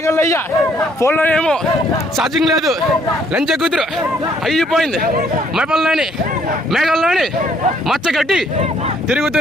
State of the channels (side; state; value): both; normal; correlation 0.65